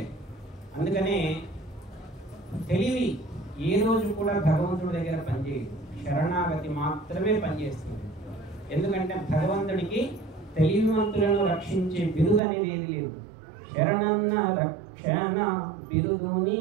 అందుకనే తెలివి ఏ రోజు కూడా భగవంతుడి దగ్గర పనిచేయదు, శరణాగతి మాత్రమే పనిచేస్తుంది. ఎందుకంటే భగవంతుడికి తెలివివంతులను రక్షించే బిరుదు అనేది ఏది లేదు. శరణన్న రక్షణ బిరుదు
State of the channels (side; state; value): left; drops out; at 12.4 s